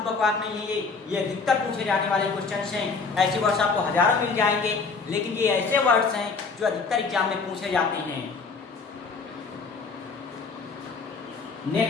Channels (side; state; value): right; quieter; 4.6 dB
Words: बकवास नहीं है। ये अधिकतर पूछे जाने वाले क्वेश्चंस हैं। ऐसे वर्ड्स आपको हजारों मिल जाएंगे, लेकिन ये ऐसे वर्ड्स हैं जो अधिकतर एग्जाम में पूछे जाते हैं।